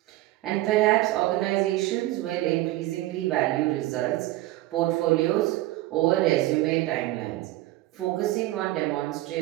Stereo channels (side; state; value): left; quieter; 17.1 dB